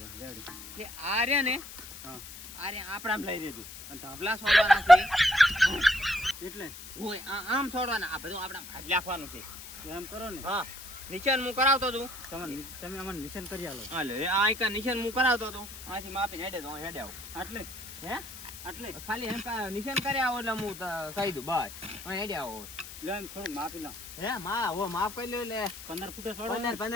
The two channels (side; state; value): left; noise; hiss, 13 dB below the sound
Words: રેડી. એટલે આ રે ને હા આ રે આપણામ લઈ લેજો. અને ધાપલા છોડવાના છે એટલે હોય આમ છોડવાના. આ બધું આપણા ખાલી રાખવાનું છે. એમ કરો ને. હા નિશાન હું કરાવતો હતું. તમે અમને નિશાન કરી આલો. હાલે આ એક નિશાન હું કરાવતો હતો. આથી માપીને હેડે તો હેડે આવો. આટલે હે આટલે ખાલી એમ નિશાન કરી આવો એટલે હું કહી દઉં બસ હેડે આવો. લે એમ થોડું માપી લો. હે માપ કરી લો. એટલે 15 ફૂટે છોડો.